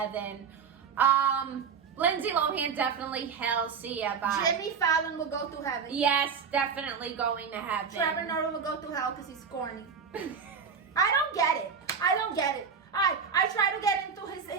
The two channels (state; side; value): quieter; left; 6.2 dB